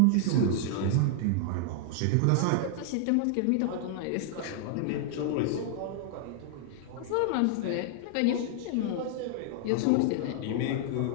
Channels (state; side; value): different; both; correlation -0.01